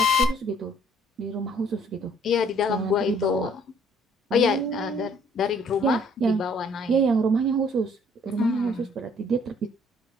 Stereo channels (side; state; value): both; normal; correlation 0.60